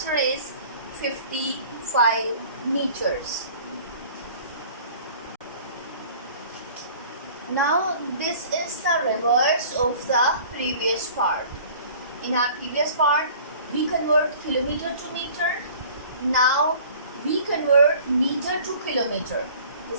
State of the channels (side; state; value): both; inverted; correlation -0.48